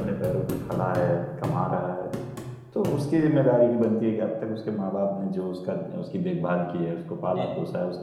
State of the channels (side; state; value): both; identical; correlation 1.00